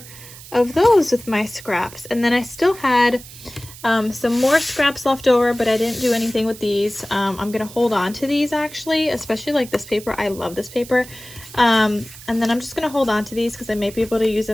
of those with my scraps, and then I still had some more scraps left over, but I didn't do anything with these. I'm gonna hold on to these actually, especially like this paper. I love this paper. And then I'm just gonna hold on to these because I may be able to use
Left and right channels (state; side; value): noise; right; hiss, 17 dB below the sound